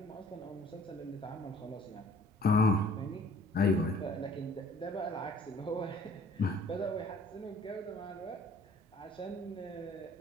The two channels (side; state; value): both; normal; correlation 0.55